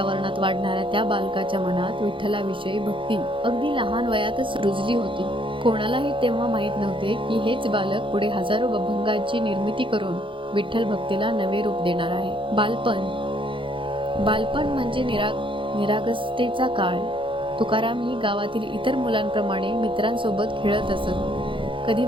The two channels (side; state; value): left; late; 0.25 ms